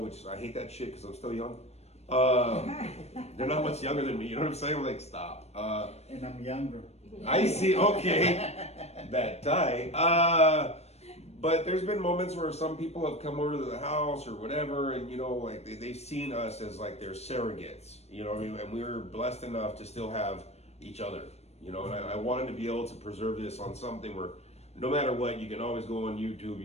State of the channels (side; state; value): right; late; 0.31 ms